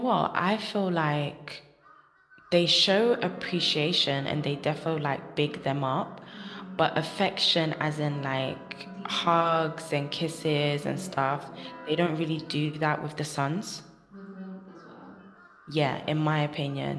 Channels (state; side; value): identical; both; correlation 1.00